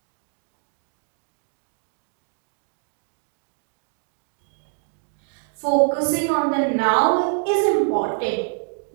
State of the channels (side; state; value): left; silent; 61 dB below the other